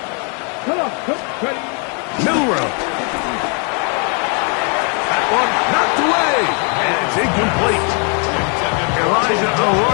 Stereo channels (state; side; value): quieter; right; 38.4 dB